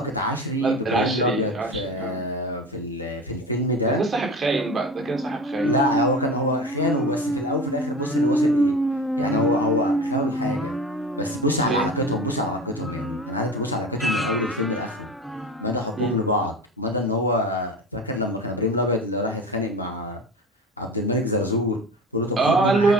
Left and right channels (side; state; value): both; normal; correlation 0.32